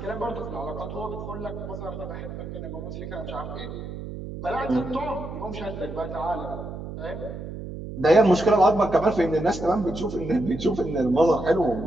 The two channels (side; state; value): right; noise; hum, 9 dB below the sound